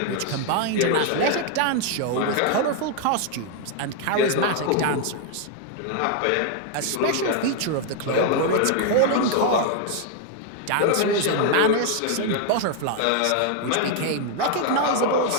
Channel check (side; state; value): both; different; correlation 0.00